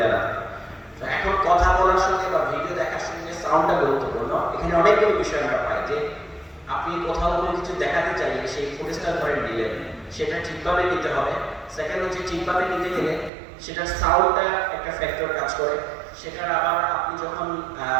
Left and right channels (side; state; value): left; drops out; at 13.3 s